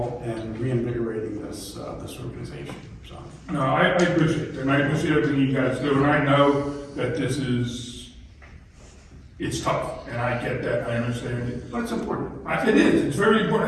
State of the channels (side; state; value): both; identical; correlation 1.00